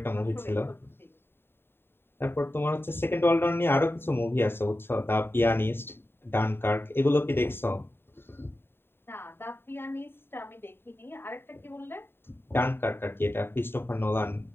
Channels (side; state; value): right; late; 0.11 ms